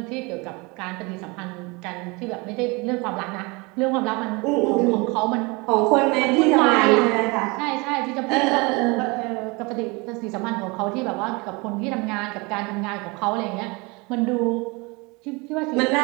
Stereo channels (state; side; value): quieter; left; 27.0 dB